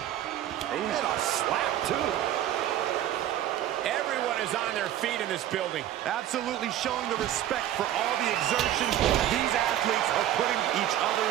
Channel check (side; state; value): left; quieter; 12.1 dB